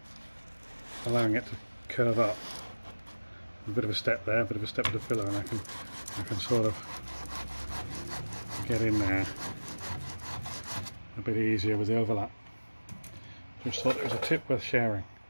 allowing it to curve up. A bit of a step there, a bit of a step with the filler, and I can sort of get in there a bit easier with the overlap. Just thought it was a tip worth sharing.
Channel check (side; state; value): both; inverted; correlation -1.00